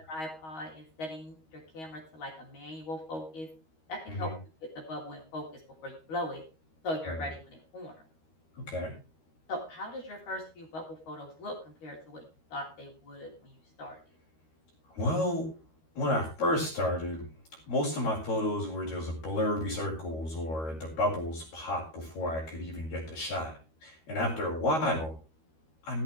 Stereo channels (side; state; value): right; late; 13 ms